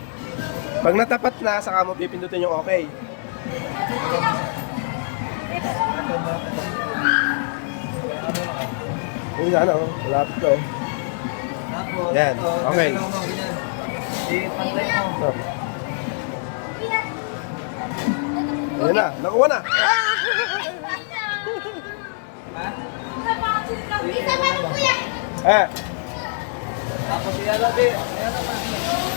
Pag natapat na, saka mo pipindutin yung okay. Uy, ano, malapit ka eh. Yan, okay. I-pantay mo. Oh. Ayan na, nakuha na. Ha? Isa pa rin kuya. Ah, Tapos iyan natin.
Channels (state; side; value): silent; right; 63 dB below the other